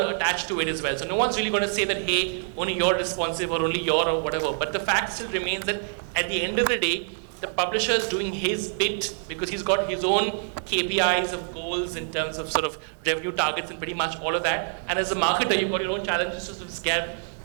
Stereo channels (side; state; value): left; silent; digital silence